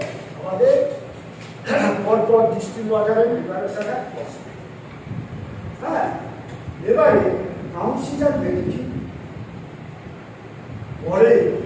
আমাদের পরপর ডিস্টিল ওয়াটারের প্রিপারেশনের প্রসেস। হ্যাঁ, এবারে কাউন্সিলার বেনিফিট পরে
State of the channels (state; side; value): identical; both; correlation 1.00